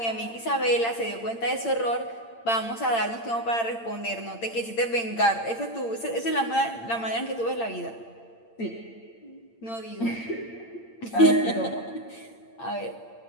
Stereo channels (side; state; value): right; late; 8.8 ms